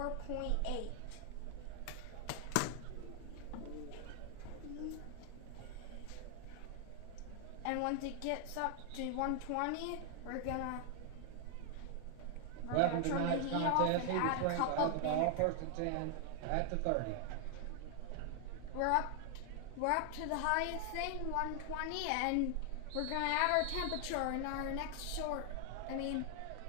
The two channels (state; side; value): different; both; correlation 0.00